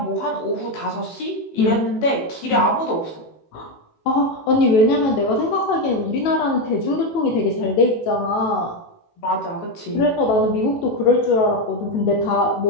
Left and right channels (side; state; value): right; late; 18 ms